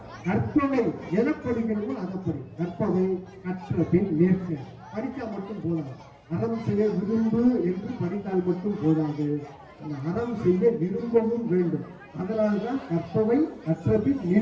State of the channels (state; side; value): identical; both; correlation 1.00